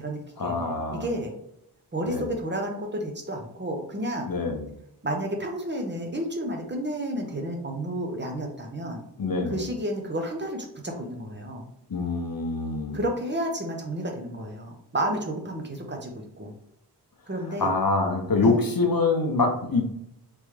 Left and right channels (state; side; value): normal; both; correlation 0.18